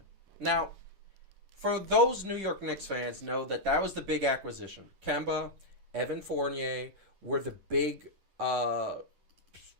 Now, for those New York Knicks fans, know that was the big acquisition. Kemba, Evan Fournier were the big, in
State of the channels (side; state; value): left; late; 10 ms